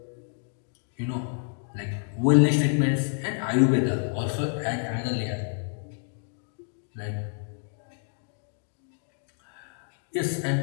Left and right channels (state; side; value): silent; right; 57 dB below the other